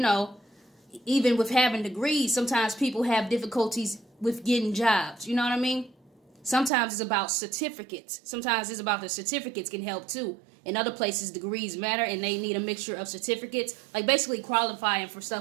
even with having degrees, sometimes people have difficulties with getting jobs. You know what I mean? Sometimes it's about certificates. Sometimes it's about the certificates can help too. In other places, degrees matter and they need a mixture of certificates. Like basically qualifying for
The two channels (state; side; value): drops out; left; at 6.7 s